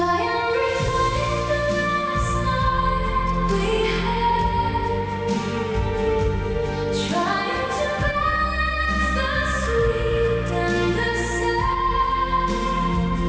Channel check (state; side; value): identical; both; correlation 1.00